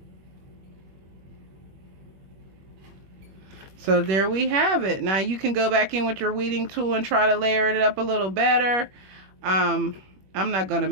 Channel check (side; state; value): left; late; 21 ms